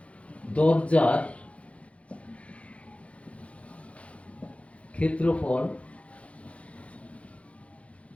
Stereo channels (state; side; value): late; right; 0.063 ms